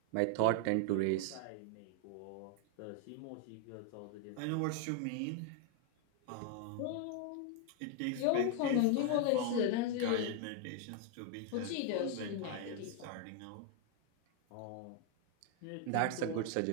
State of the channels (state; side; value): different; both; correlation 0.00